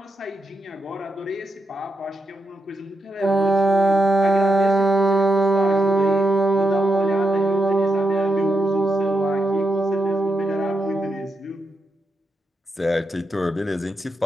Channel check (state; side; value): normal; both; correlation 0.85